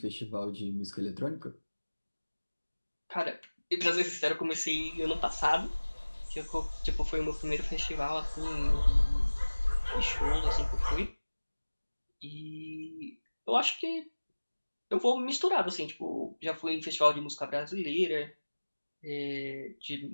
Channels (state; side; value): inverted; both; correlation -1.00